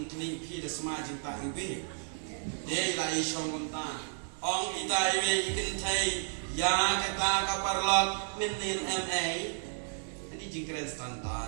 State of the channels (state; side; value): silent; left; digital silence